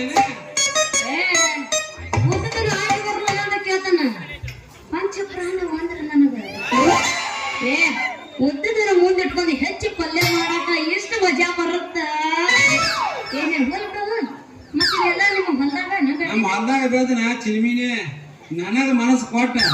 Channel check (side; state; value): both; identical; correlation 1.00